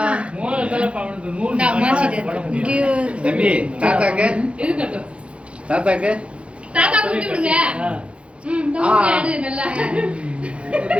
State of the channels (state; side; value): late; left; 0.060 ms